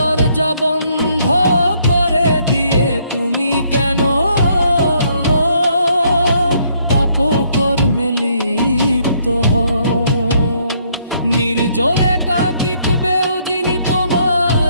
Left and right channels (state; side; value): inverted; both; correlation -0.69